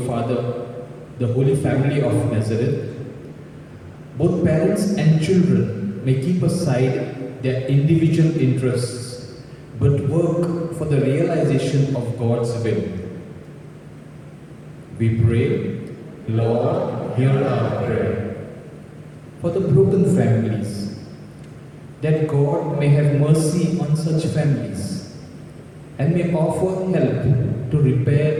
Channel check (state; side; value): identical; both; correlation 1.00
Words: Father, the Holy Family of Nazareth, both parents and children may keep aside their individual interests, but work for the realization of God's will. We pray, Lord, hear our prayer. For the broken families, that God may have mercy on such families and may offer help to repair